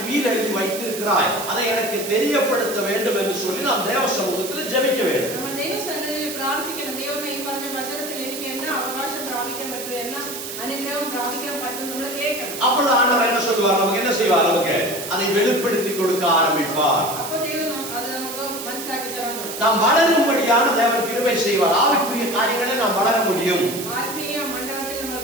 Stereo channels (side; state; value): right; noise; hiss, 8 dB below the sound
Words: உயிர் எழுதி வைத்திருக்கிறாய், அதை எனக்கு தெரியப்படுத்த வேண்டும் என்று சொல்லி நாம் தேவ சமூகத்தில் ஜெபிக்க வேண்டும். നമ്മൾ ദൈവസന്നിധിയിൽ പ്രാർത്ഥിക്കണം. ദൈവമേ ഈ പറഞ്ഞ വചനത്തിൽ എനിക്ക് എന്നാ അവകാശം പ്രാപിക്കാൻ പറ്റും, എന്നാ അനുഗ്രഹം പ്രാപിക്കാൻ പറ്റും നമ്മൾ കേൾക്കണം. அப்பொழுது ஆண்டவர் என்ன சொல்வார்? நமக்கு என்ன செய்வார்? நமக்கு அதை வெளிப்படுத்தி கொடுக்க ஆரம்பிப்பார். അപ്പോൾ ദൈവം അത് നമുക്ക് മനസ്സിലാക്കി തരാൻ തുടങ്ങും. நாம் வளரும்படியான தேவன் கிருபை செய்வார். ஆவிக்குரிய காரியங்களை நாம் வளர முடியும். ആത്മീയ മണ്ഡലത്തിൽ